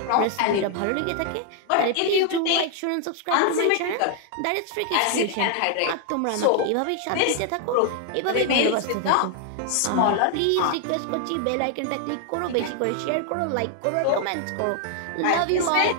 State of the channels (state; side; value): different; both; correlation 0.00